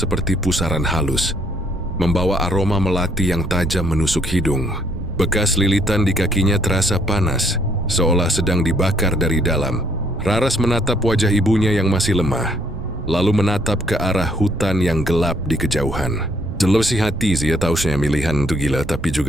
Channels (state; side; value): noise; right; rumble, 9 dB below the sound